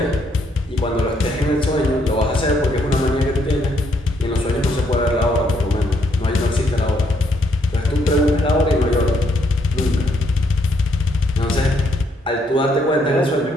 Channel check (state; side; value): normal; both; correlation 0.72